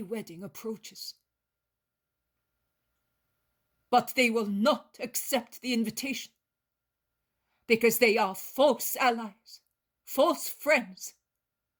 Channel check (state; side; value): identical; both; correlation 1.00